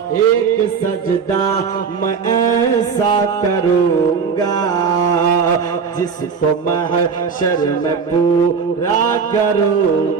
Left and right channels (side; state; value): left; quieter; 5.8 dB